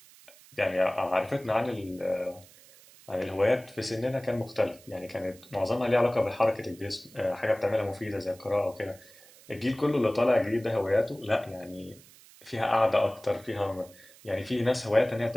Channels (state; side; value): noise; right; hiss, 23 dB below the sound